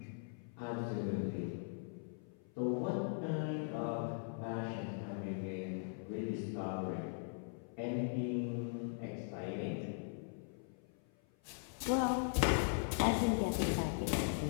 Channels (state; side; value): silent; right; 51 dB below the other